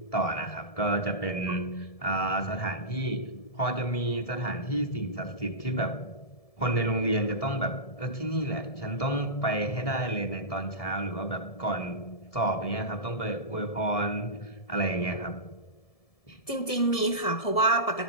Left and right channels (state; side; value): late; right; 1.7 ms